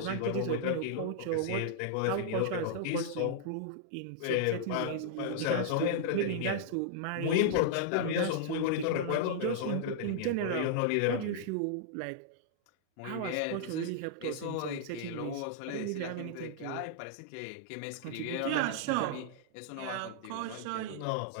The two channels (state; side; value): different; both; correlation -0.01